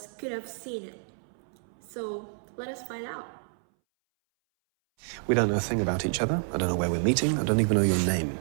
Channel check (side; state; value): left; silent; 59 dB below the other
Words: could have seen it. So let us find out. We don't know a thing about each other. I don't know where we're meeting. I don't even know your name.